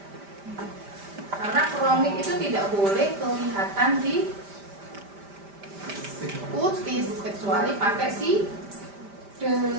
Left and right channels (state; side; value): late; left; 5.1 ms